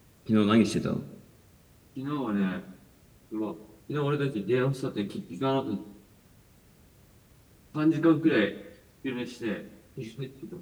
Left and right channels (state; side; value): identical; both; correlation 1.00